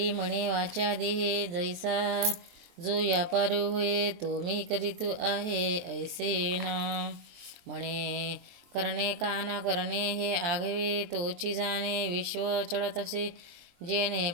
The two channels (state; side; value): late; left; 23 ms